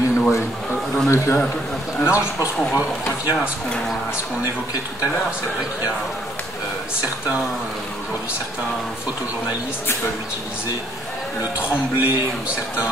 a way. I don't know if you have. Non, je pense qu'on revient à ce qu'on évoquait tout à l'heure. C'est vrai qu'il y a aujourd'hui certains photojournalistes qui peuvent utiliser le tremblé ou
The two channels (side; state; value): both; normal; correlation 0.66